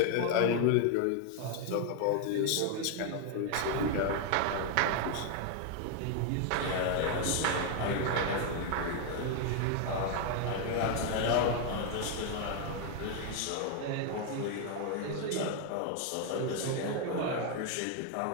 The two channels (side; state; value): both; different; correlation 0.01